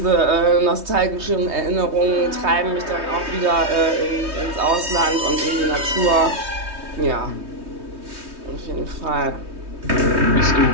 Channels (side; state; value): left; late; 3.2 ms